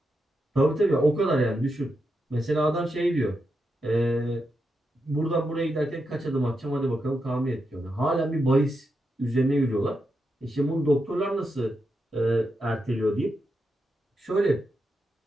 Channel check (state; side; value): normal; both; correlation 0.85